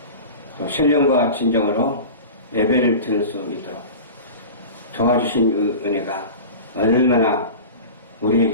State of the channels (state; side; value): inverted; both; correlation -0.33